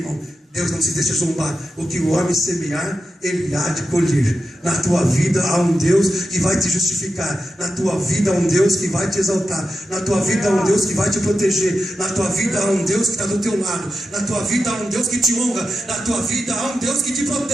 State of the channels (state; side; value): normal; both; correlation 0.89